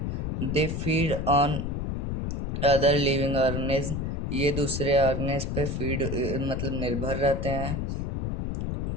They feed on other living organism. ये दूसरे ऑर्गेनिज्म पे फीड मतलब निर्भर रहते हैं।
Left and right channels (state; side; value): noise; left; rumble, 2 dB below the sound